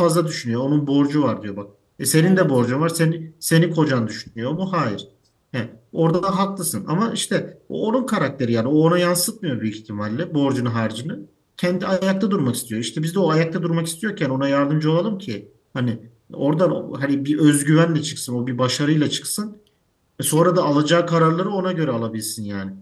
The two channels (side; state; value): both; identical; correlation 1.00